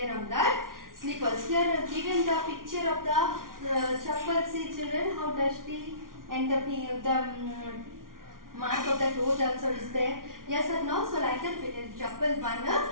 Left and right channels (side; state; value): left; late; 0.90 ms